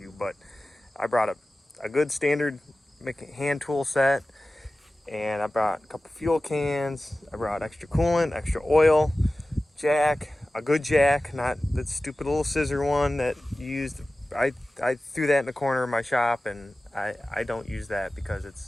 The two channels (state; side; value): normal; both; correlation 0.96